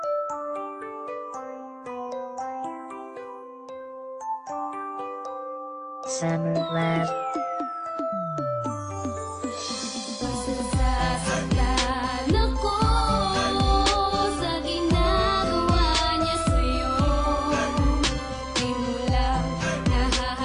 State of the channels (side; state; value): both; identical; correlation 1.00